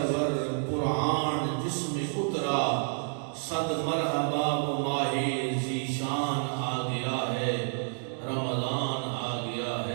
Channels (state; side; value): silent; left; 58 dB below the other